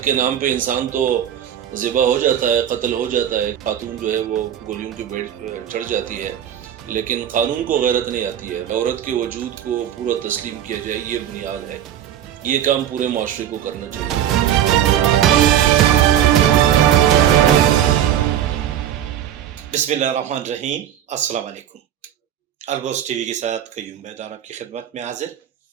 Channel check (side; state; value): left; quieter; 10.5 dB